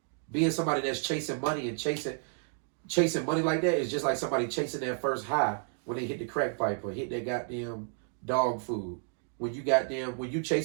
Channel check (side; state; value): left; silent; 56 dB below the other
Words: Being somebody that's chasing money and chasing money like that is just like somebody chasing their first high when they hit the crack pipe or hit that goddamn dog food. When you